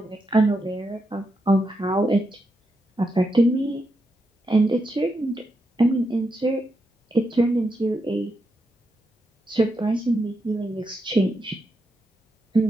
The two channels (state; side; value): normal; both; correlation 0.84